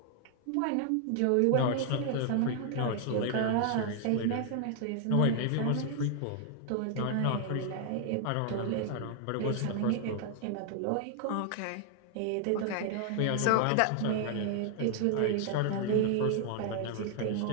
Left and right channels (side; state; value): both; different; correlation 0.00